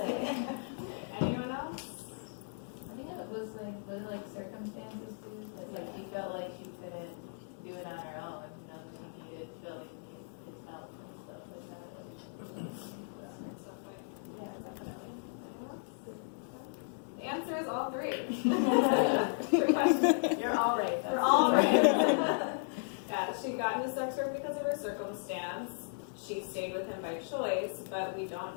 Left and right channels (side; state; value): right; silent; digital silence